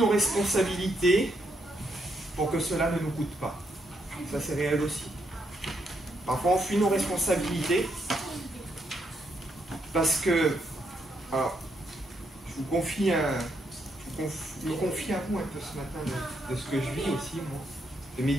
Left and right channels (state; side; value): normal; both; correlation 0.77